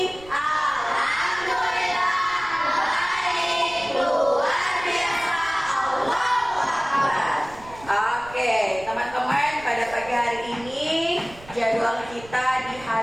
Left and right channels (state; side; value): noise; right; rumble, 20 dB below the sound